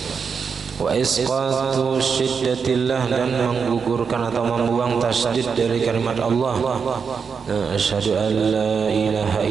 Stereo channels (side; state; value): left; quieter; 5.9 dB